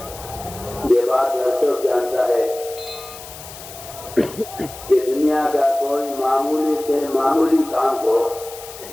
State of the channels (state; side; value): noise; left; hiss, 15 dB below the sound